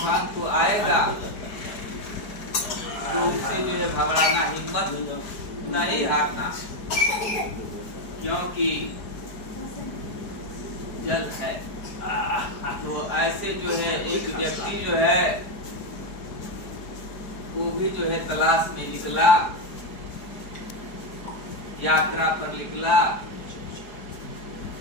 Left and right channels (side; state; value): right; late; 4.7 ms